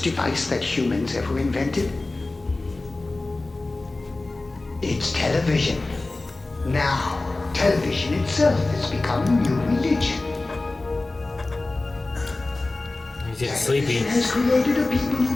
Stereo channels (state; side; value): quieter; right; 3.1 dB